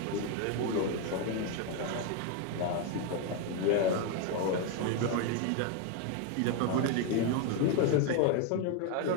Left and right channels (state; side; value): different; both; correlation 0.01